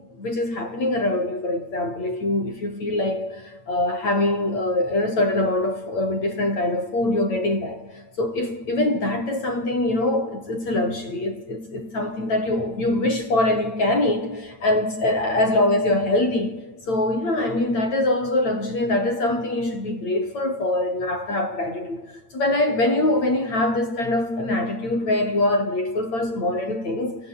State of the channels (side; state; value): right; late; 8.8 ms